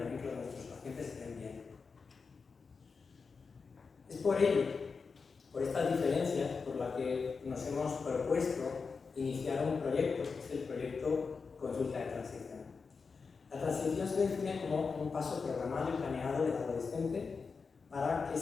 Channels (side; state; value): right; quieter; 5.0 dB